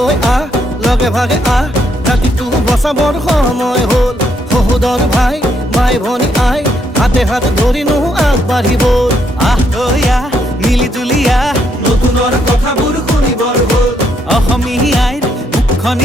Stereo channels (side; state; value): both; normal; correlation 0.74